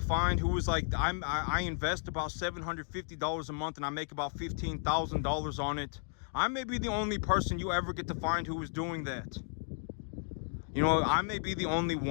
find who is like, I invest about $750 a month and I make about $15,000 on it. I may be the only person you ever get to find who is doing that. You know, I may be the only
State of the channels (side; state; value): right; silent; 55 dB below the other